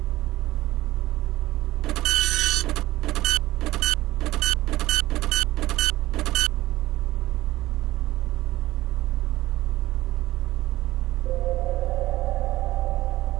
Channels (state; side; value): quieter; left; 17.0 dB